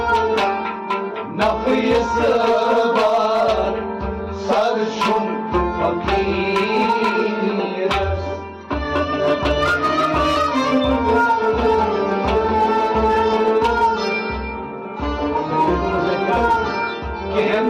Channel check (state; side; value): identical; both; correlation 1.00